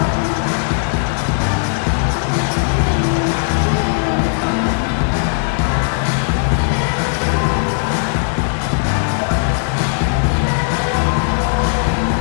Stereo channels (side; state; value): right; silent; digital silence